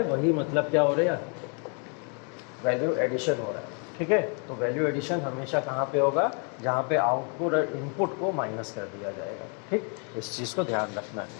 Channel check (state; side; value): quieter; right; 38.1 dB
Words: वही मतलब क्या हो रहा है, वैल्यू एडिशन हो रहा है। ठीक है, तो वैल्यू एडिशन हमेशा कहाँ पे होगा, जहाँ पे आउटपुट और इनपुट को माइनस कर दिया जाएगा। ठीक, इस चीज़ को ध्यान रखना